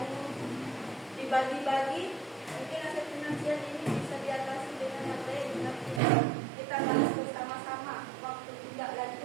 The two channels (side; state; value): left; drops out; at 6.0 s